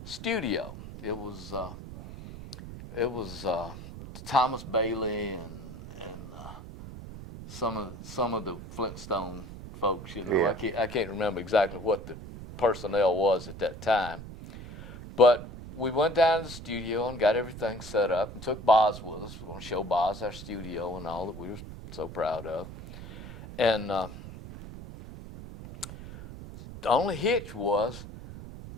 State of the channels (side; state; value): right; noise; rumble, 12 dB below the sound